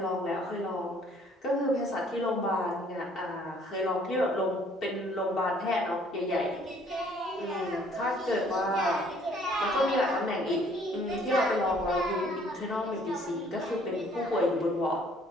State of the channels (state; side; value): normal; both; correlation 0.60